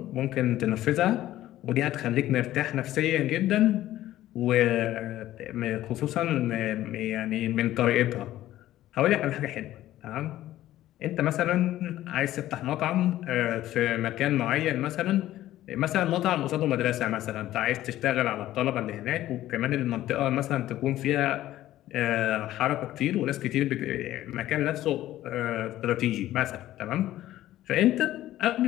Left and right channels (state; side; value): quieter; right; 14.2 dB